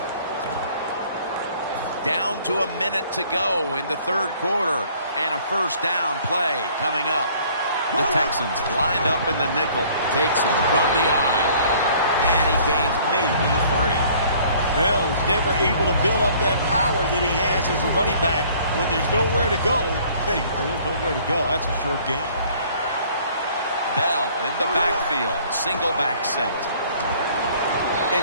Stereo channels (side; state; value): both; inverted; correlation -0.56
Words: Down to a minute to go in the third quarter. And a first down play coming up. The Texans lined up in the nickel. Takes it from the eye. And he gains maybe 3. Bell's never able to build up that power that he has as a running back when there's nowhere to go. Hey, there's nowhere to go. That's a short game. Bell in the backfield. Single back set.